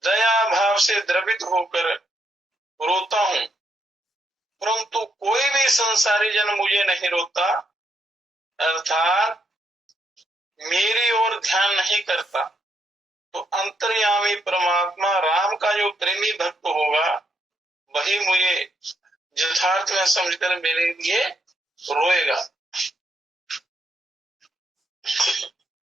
दया भाव से द्रवित होकर रोता हूं, परंतु कोई भी संसारी जन मुझे नहीं रोता, अर्थात मेरी ओर ध्यान नहीं करता। तो अंतर्यामी परमात्मा राम का जो प्रेमी भक्त होगा वही मुझे यथार्थ में समझकर मेरे लिए रोएगा।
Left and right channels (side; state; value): both; normal; correlation 0.77